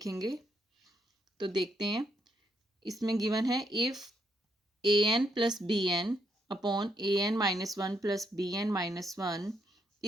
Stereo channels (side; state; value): both; normal; correlation 0.76